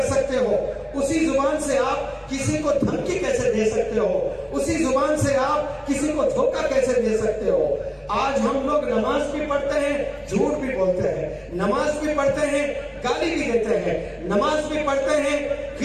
سکتے ہو؟ اسی زبان سے آپ کسی کو دھمکی کیسے دے سکتے ہو؟ اسی زبان سے آپ کسی کو دھوکہ کیسے دے سکتے ہو؟ آج ہم لوگ نماز بھی پڑھتے ہیں، جھوٹ بھی بولتے ہیں، نماز بھی پڑھتے ہیں، گالی بھی دیتے ہیں، نماز بھی پڑھتے ہیں،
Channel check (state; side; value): identical; both; correlation 1.00